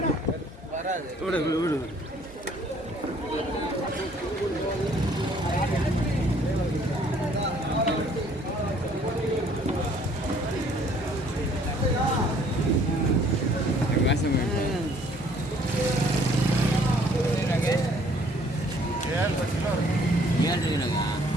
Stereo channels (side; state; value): both; normal; correlation 0.59